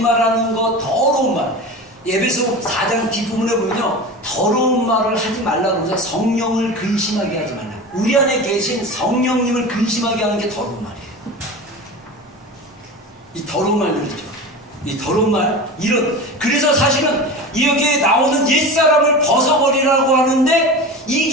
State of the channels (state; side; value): normal; both; correlation 0.30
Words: 거, 더러운 말. 에베소 4장 뒷부분에 보면요, 더러운 말을 하지 말라고 해서 성령을 근심하게 하지 말라. 우리 안에 계신 성령님을 근심하게 하는 게 더러운 말이에요. 이 더러운 말들이죠. 이 더러운 말, 그래서 사실은 여기에 나오는 옛사람을 벗어버리라고 하는데,